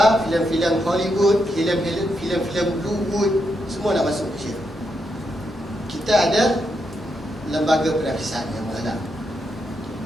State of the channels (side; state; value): both; normal; correlation 0.82